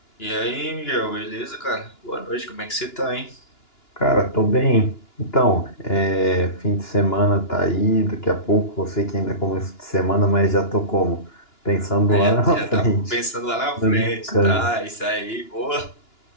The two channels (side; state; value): right; late; 2.9 ms